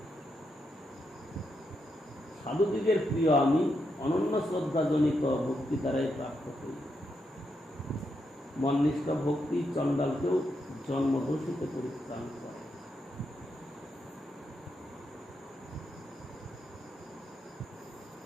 সাধুদিগের প্রিয় আমি, অনন্য শ্রদ্ধাজনিত ভক্তি দ্বারাই প্রাপ্ত হই। মননিষ্ঠ ভক্তি চণ্ডালকেও জন্মদোষিতে পরিত্রাণ করে।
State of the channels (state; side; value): normal; both; correlation 0.82